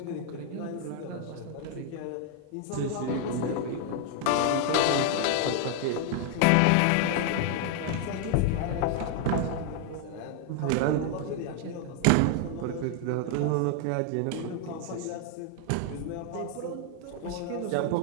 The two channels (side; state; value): both; different; correlation 0.00